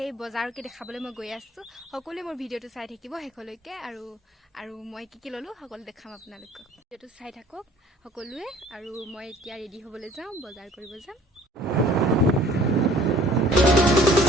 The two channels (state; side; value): normal; both; correlation 0.53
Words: বজাৰকে দেখাবলৈ মই গৈ আছোঁ। সকলোৱে মোৰ ভিডিঅ'টো চাই থাকিব শেষলৈকে আৰু মই কি ল'লোঁ সকলো দেখাম আপোনালোকক। ভিডিঅ'টো চাই থাকক সকলোৱে আৰু মই এতিয়া ৰেডি হ'বলৈ যাওঁ, বজাৰ কৰিব যাম।